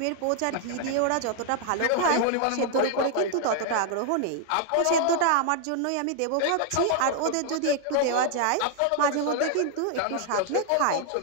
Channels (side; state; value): both; different; correlation 0.00